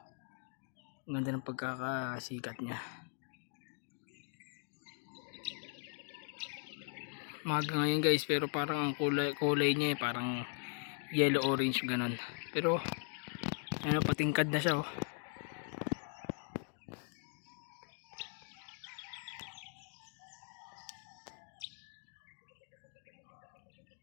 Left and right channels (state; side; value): silent; right; 51 dB below the other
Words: Ang ganda ng pagkakasikat niya. Maga ngayon guys, pero parang ang kulay niya parang yellow orange ganon. Pero ano, patingkad na siya, oh.